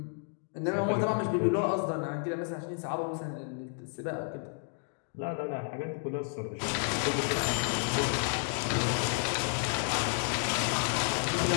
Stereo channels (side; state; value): right; silent; 57 dB below the other